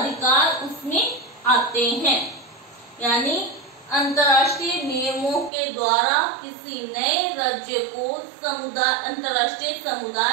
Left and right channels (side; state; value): left; drops out; at 5.5 s